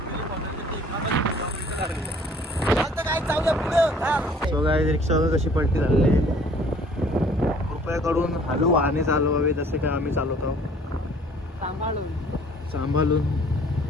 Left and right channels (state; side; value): normal; both; correlation 0.55